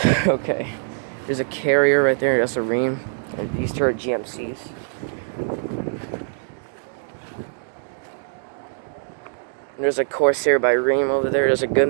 Okay. There's a Carrier right there. That's a Rheem. And these two are GMCs. There's a Corsair by Rheem over there. There's a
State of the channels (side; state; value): left; silent; digital silence